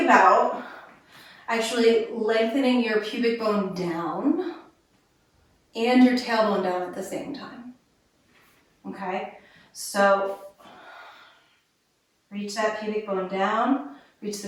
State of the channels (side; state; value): both; identical; correlation 1.00